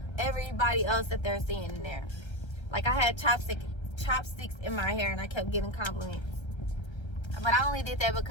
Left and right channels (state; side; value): late; right; 1.3 ms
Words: everybody else that they're seeing in there. Like, I had chopsticks in my hair, and I kept getting compliments. But I only did that